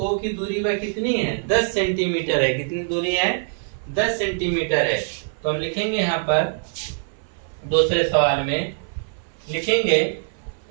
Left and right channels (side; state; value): left; silent; 58 dB below the other